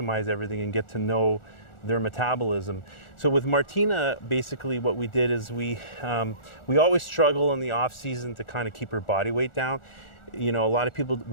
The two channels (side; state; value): right; late; 1.4 ms